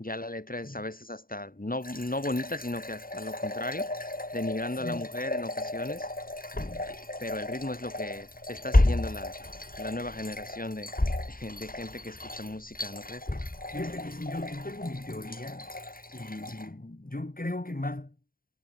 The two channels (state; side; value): late; right; 0.42 ms